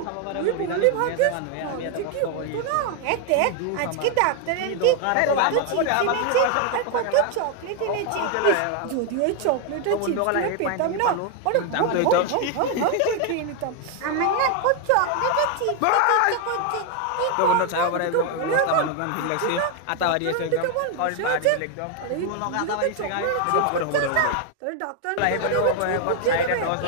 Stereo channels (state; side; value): different; both; correlation 0.01